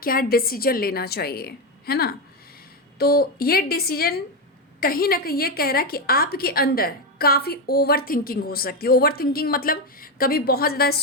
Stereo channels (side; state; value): both; normal; correlation 0.10